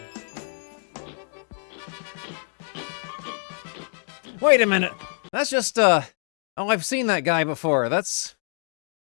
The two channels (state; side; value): silent; right; digital silence